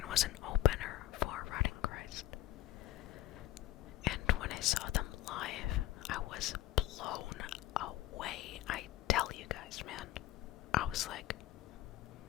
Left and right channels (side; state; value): right; quieter; 15.1 dB